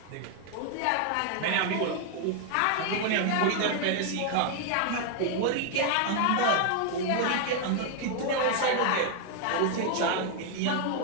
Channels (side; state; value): both; different; correlation 0.00